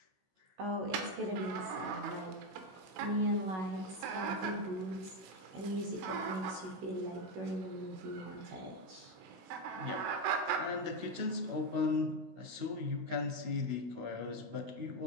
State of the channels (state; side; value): late; left; 16 ms